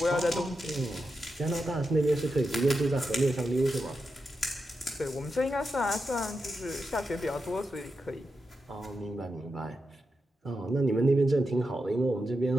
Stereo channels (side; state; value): both; normal; correlation 0.88